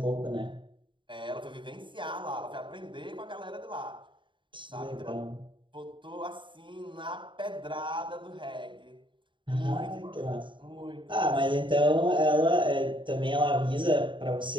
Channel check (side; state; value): left; late; 0.23 ms